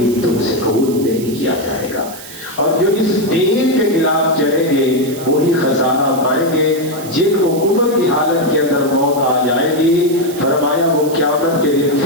تم سے قبول نہیں کیا جائے گا، اور جو اس دین کے خلاف چلیں گے وہی خسارہ پائیں گے۔ جن کو کفر کی حالت کے اندر موت آ جائے گی، فرمایا وہ قیامت کے دن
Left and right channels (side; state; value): right; noise; hiss, 15 dB below the sound